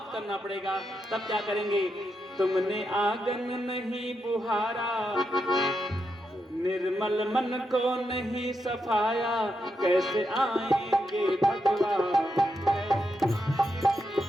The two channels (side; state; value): both; normal; correlation 0.84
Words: करना पड़ेगा। तब क्या करेंगे? तुमने आंगन नहीं बुहारा, निर्मल मन को नहीं सफाया, कैसे आएंगे भगवान।